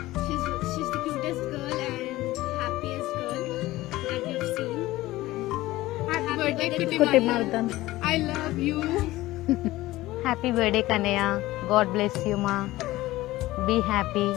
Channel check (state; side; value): quieter; right; 17.5 dB